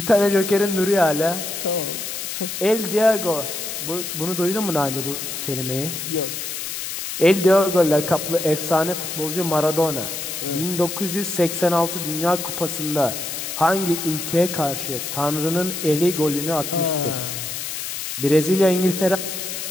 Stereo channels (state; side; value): noise; left; hiss, 5 dB below the sound